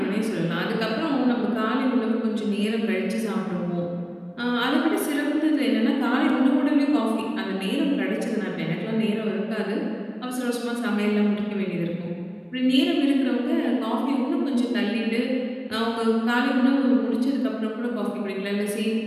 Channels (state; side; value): identical; both; correlation 1.00